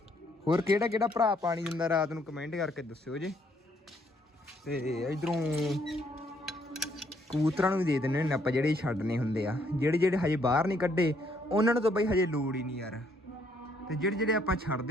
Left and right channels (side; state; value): both; normal; correlation 0.69